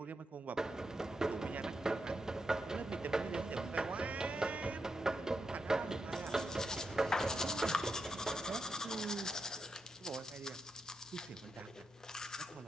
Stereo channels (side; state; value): both; normal; correlation 0.86